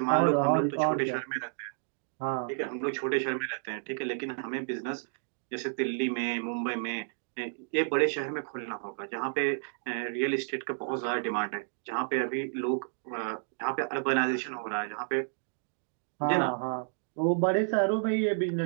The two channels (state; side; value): silent; left; digital silence